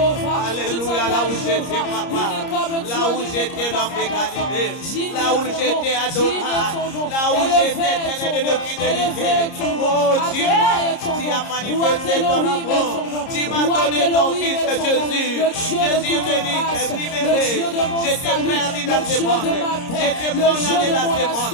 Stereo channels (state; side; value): late; right; 30 ms